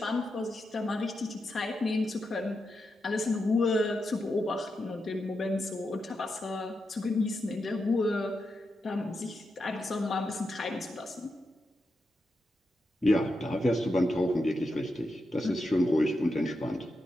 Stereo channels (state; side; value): normal; both; correlation 0.87